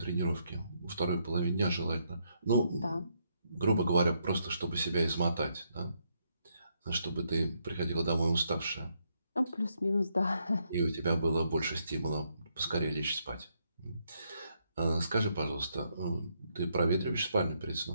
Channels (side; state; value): both; inverted; correlation -0.76